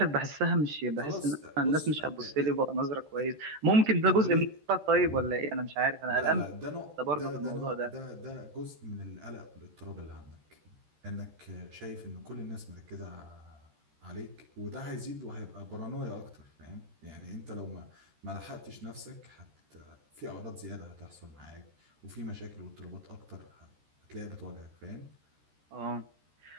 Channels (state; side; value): late; left; 13 ms